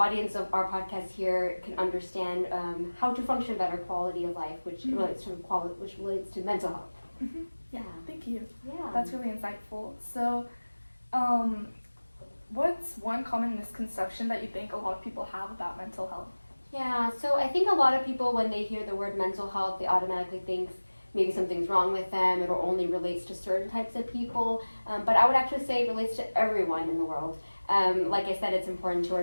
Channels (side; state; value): both; inverted; correlation -1.00